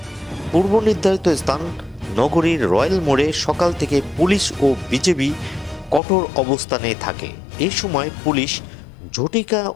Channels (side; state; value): right; drops out; at 6.0 s